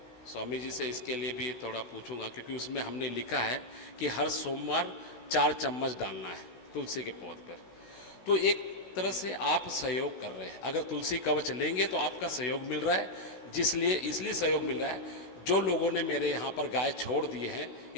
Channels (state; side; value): late; right; 16 ms